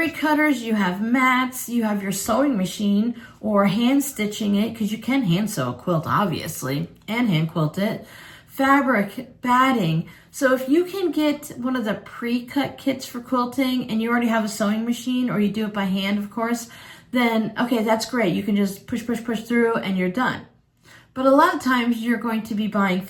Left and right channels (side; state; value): both; identical; correlation 1.00